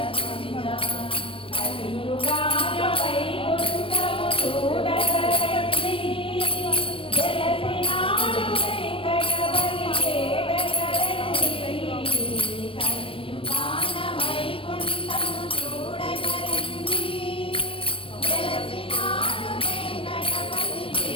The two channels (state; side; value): late; right; 0.26 ms